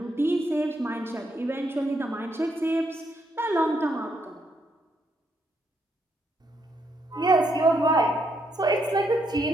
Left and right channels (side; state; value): both; normal; correlation 0.76